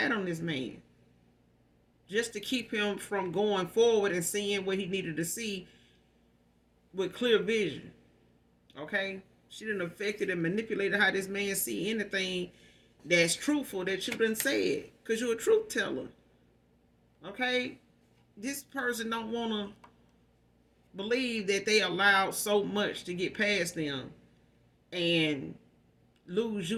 on this man. Just to keep him from going forward and seeing what he needed to see with clear vision. Okay? She done affected and manipulated how this man see anything that's truthful that you done said. Because you're a truth teller. Okay? This person don't want to believe that they allowed so much to get past them and lose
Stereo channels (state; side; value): identical; both; correlation 1.00